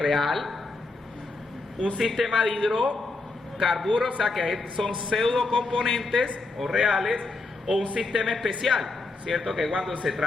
un sistema de hidrocarburos, o sea, que son pseudo componentes o reales, o un sistema especial, ¿cierto? Que cuando se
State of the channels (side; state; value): right; quieter; 3.4 dB